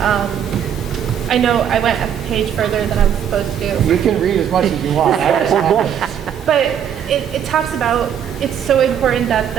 I know I went a page further than I was supposed to. You can read as much as you want. I understand. But it talks about, it's so important that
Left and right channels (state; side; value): quieter; left; 8.9 dB